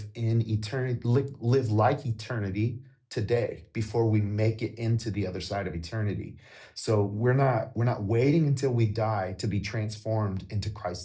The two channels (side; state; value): both; identical; correlation 1.00